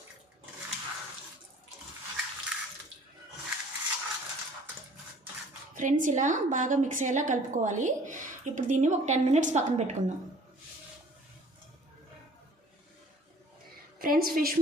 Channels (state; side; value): normal; both; correlation 0.51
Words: ఫ్రెండ్స్, ఇలా బాగా మిక్స్ అయ్యేలా కలుపుకోవాలి. ఇప్పుడు దీన్ని ఒక 10 మినిట్స్ పక్కన పెట్టుకుందాం. ఫ్రెండ్స్, ఫిష్